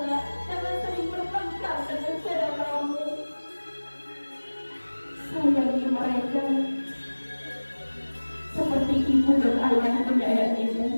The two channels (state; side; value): inverted; both; correlation -1.00